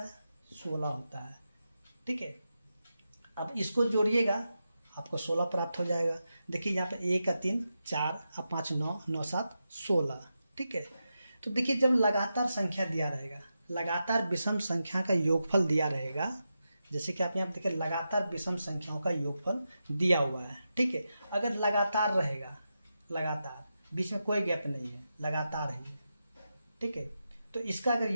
16 होता है। ठीक है, अब इसको जोड़िएगा आपको 16 प्राप्त हो जाएगा। देखिए यहाँ पे 1 का 3 4 और 5 9, 9 7 16। ठीक है, तो देखिए जब लगातार संख्या दिया रहेगा, लगातार विषम संख्या का योगफल दिया रहेगा, जैसे कि आप यहाँ देखिए लगातार विषम संख्याओं का योगफल दिया हुआ है। ठीक है, अगर लगातार रहेगा, लगातार बीच में कोई गैप नहीं है, लगातार है। ठीक है, तो इसका अगर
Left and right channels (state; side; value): inverted; both; correlation -0.89